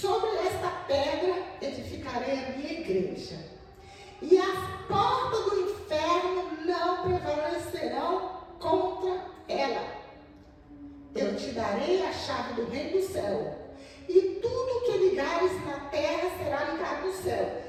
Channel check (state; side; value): identical; both; correlation 1.00